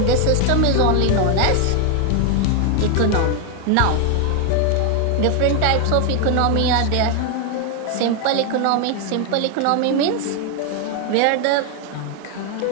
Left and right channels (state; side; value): different; both; correlation 0.01